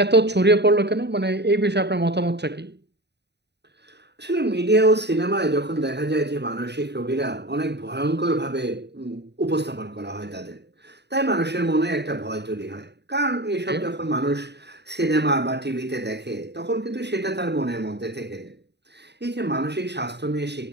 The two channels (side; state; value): left; late; 0.49 ms